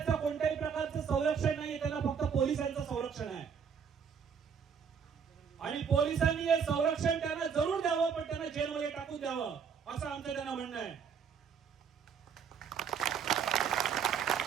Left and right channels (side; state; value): left; quieter; 6.9 dB